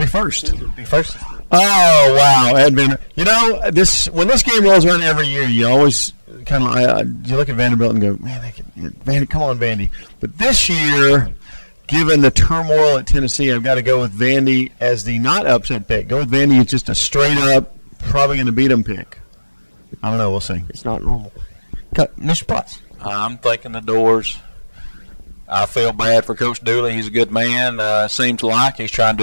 first. Be first. Oh, wow. At Vanderbilt. You know, when this game rolls around every year, you always kind of you look at Vanderbilt and go, man, come on, Vandy. But this year, given the turmoil at Tennessee, I've got to go with Vandy as the not upset pick. Go with Vandy. It's just a straight up, probably going to beat them pick. I don't know. We'll see. It's not normal. Mr. Potts. I'm thinking the Doors. I feel bad for Coach Dooley. He's a good man. Seems like he's trying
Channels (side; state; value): both; inverted; correlation -1.00